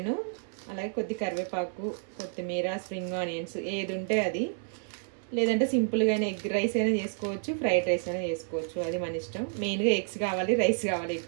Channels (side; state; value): left; silent; 58 dB below the other